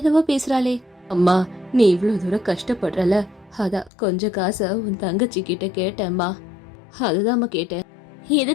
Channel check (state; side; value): drops out; right; at 3.9 s